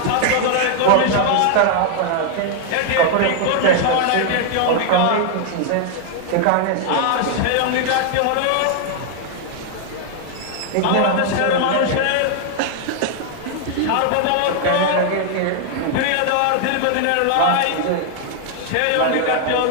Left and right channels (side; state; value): both; different; correlation 0.00